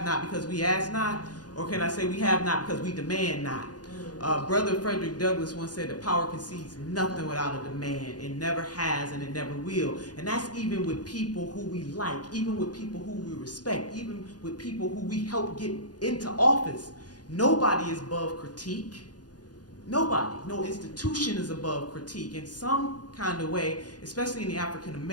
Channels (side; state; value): right; late; 0.69 ms